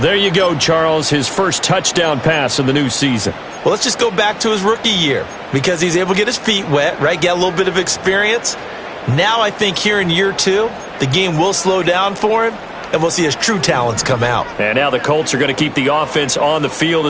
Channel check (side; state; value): both; identical; correlation 1.00